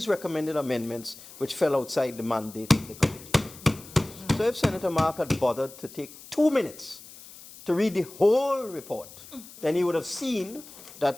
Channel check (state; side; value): noise; left; hiss, 18 dB below the sound